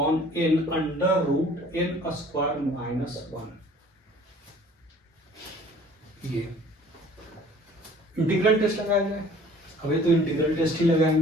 n under root n square minus 1। ये इंटीग्रल टेस्ट लगाया जाए। अभी तो इंटीग्रल टेस्ट ही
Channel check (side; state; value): both; normal; correlation 0.51